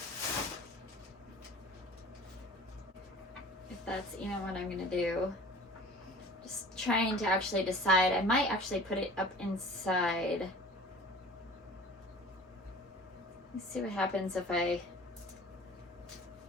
If that's even what I'm going to do. Trying to actually decide. I might actually put it up inside. Let's see what happens if I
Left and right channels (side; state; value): both; normal; correlation 0.43